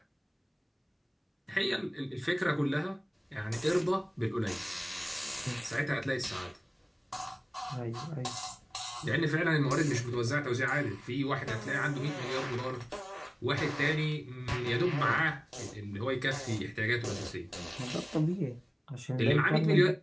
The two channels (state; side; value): identical; both; correlation 1.00